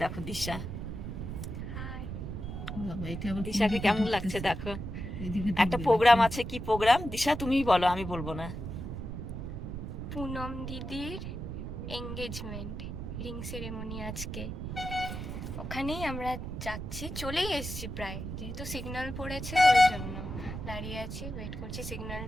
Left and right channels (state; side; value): noise; right; rumble, 6 dB below the sound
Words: দেখো দিশা, দিশাকে কেমন লাগছে দেখো। একটা প্রোগ্রাম আছে, কি প্রোগ্রাম দিশা তুমিই বলো, আমি বলবো না। পুনম দিদির এঙ্গেজমেন্ট রিং সেরেমনি আজকে, ওখানেই আমরা যাচ্ছি, চলেই এসেছি প্রায়, যেহেতু সিগন্যাল পড়েছে ওই জন্য দাঁড়িয়ে আছি, ওয়েট করছি